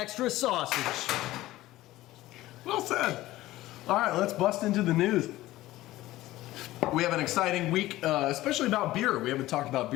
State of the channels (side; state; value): right; quieter; 16.6 dB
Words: sausage. Well said. All right, let's bust into the news. We have an exciting week, especially about beer. We haven't talked about